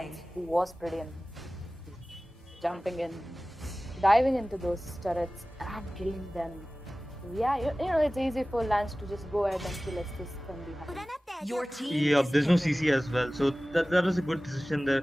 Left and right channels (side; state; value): both; normal; correlation 0.97